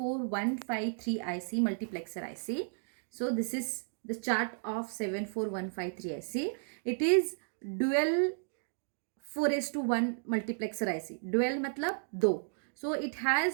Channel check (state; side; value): silent; left; digital silence